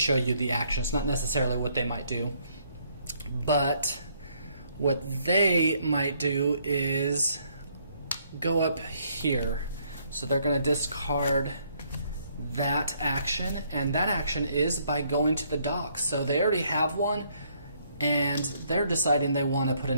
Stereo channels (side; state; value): both; inverted; correlation -0.68